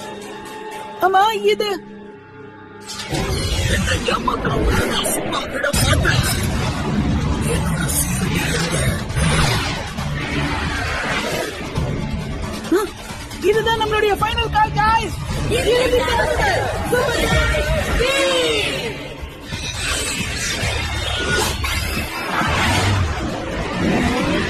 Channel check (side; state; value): both; identical; correlation 1.00